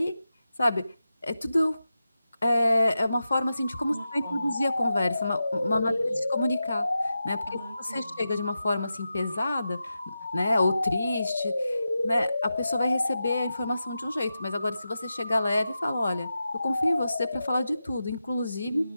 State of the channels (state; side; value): inverted; both; correlation -0.91